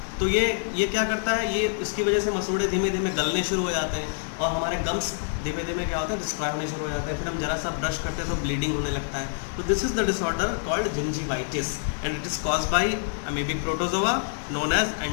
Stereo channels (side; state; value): right; silent; digital silence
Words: तो ये क्या करता है? ये इसकी वजह से मसूड़े धीमे धीमे गलने शुरू हो जाते हैं और हमारे गम्स धीमे धीमे क्या होता है? डिस्ट्रॉय होने शुरू हो जाते हैं। फिर हम जरा सा ब्रश करते हैं तो ब्लीडिंग होने लगता है। तो this is the disorder called gingivitis and it is caused by amoebic protozoa known as